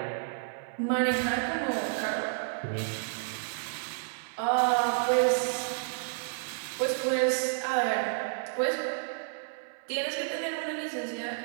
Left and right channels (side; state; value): left; silent; 57 dB below the other